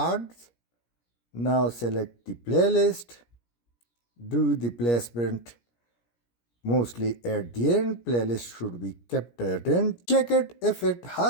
Now select the playlist. Do the placement mostly at the end. Playlist should be kept at end. Check it if it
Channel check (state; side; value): late; right; 17 ms